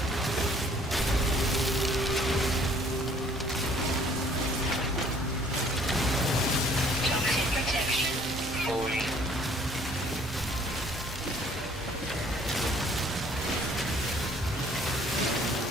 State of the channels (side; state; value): both; normal; correlation 0.58